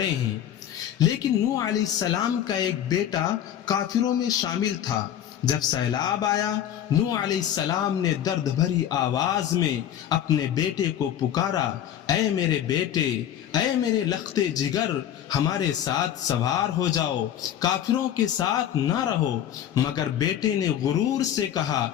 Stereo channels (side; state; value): right; quieter; 10.5 dB